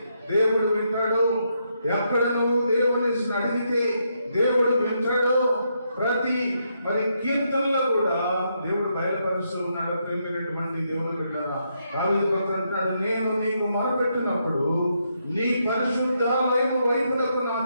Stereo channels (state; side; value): inverted; both; correlation -0.79